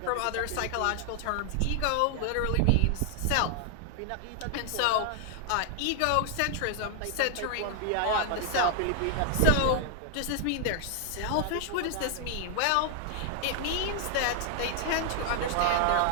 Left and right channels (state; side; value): different; both; correlation 0.00